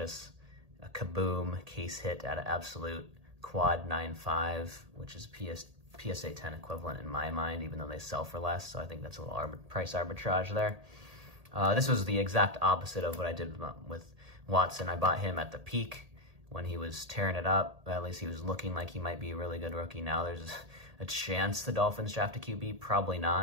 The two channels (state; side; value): late; left; 1.8 ms